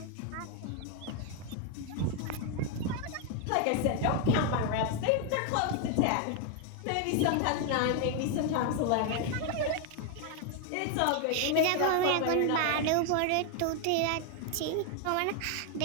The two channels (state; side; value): different; both; correlation 0.01